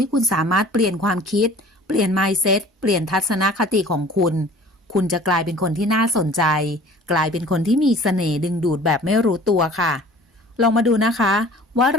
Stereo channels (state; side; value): normal; both; correlation 0.47